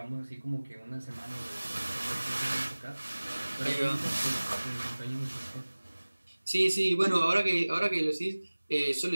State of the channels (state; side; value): inverted; both; correlation -1.00